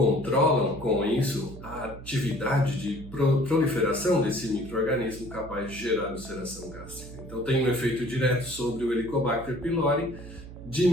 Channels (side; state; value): right; noise; hum, 14 dB below the sound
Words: com isso a atividade de proliferação desse micro-organismo capaz de gerar ulceração gástrica. Então tem um efeito direto sobre o Helicobacter pylori,